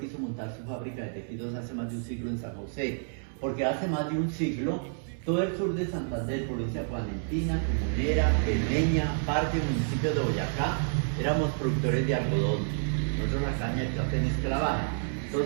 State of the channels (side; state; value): left; silent; 58 dB below the other